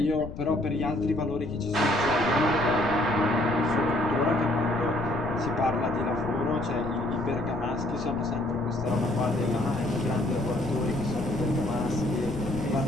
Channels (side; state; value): left; noise; rumble, 11 dB below the sound